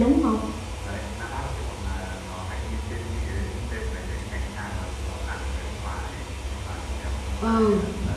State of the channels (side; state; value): both; identical; correlation 1.00